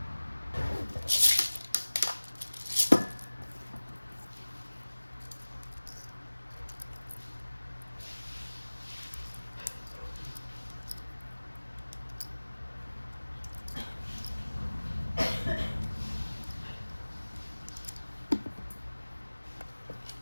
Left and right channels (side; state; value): both; inverted; correlation -1.00